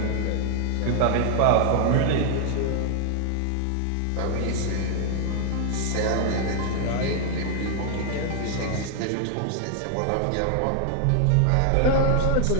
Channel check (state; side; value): different; both; correlation 0.00